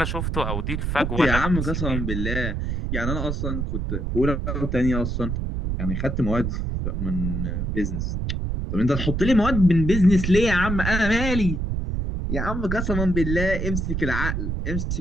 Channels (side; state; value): right; noise; rumble, 1 dB below the sound